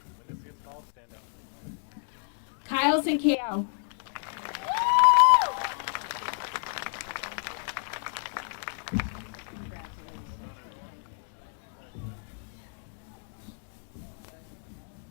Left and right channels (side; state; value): right; silent; 57 dB below the other